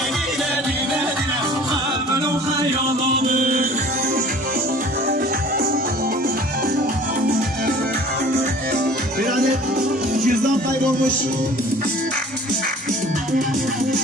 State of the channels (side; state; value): both; normal; correlation 0.47